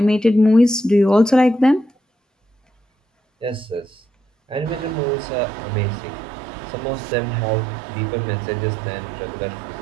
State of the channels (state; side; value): drops out; left; at 5.0 s